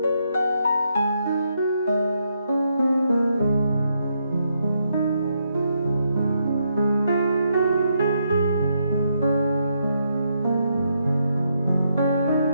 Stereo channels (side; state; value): both; inverted; correlation -0.78